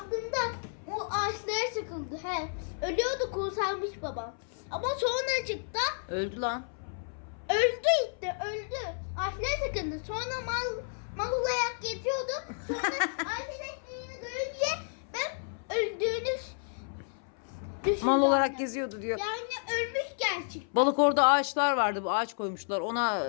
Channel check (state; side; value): silent; right; 57 dB below the other